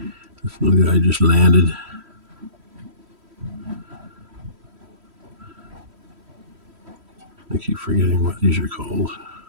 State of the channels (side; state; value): left; late; 3.1 ms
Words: This little guy just landed. I keep forgetting what these are called.